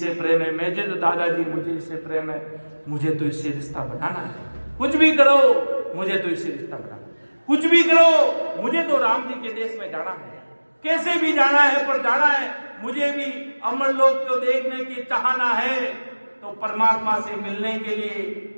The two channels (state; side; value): inverted; both; correlation -1.00